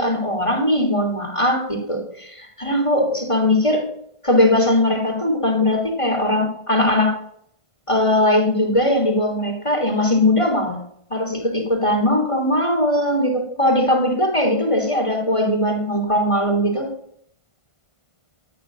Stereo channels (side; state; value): right; late; 1.5 ms